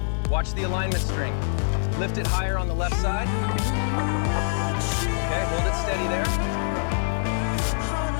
Watch the alignment string. Lift it higher on the left side. Okay, hold it steady there.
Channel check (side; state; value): right; silent; digital silence